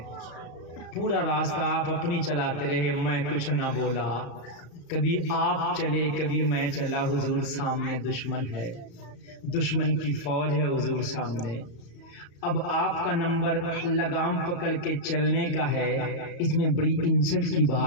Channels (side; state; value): right; late; 35 ms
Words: پورا راستہ آپ اپنی چلاتے رہے، میں کچھ نہ بولا. کبھی آپ چلے کبھی میں چلا. حضور سامنے دشمن ہے، دشمن کی فوج ہے حضور سامنے. اب آپ کا نمبر لگام پکڑ کے چلنے کا ہے. اس میں بڑی انسٹ کی